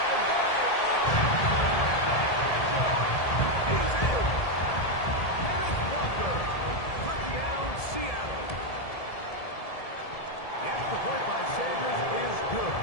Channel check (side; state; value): right; late; 1.7 ms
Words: they are he's in. Kenneth Walker. Touchdown, Seattle. The extra point by Sanders is good.